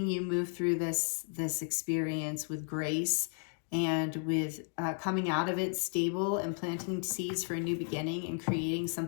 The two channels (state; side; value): silent; right; 55 dB below the other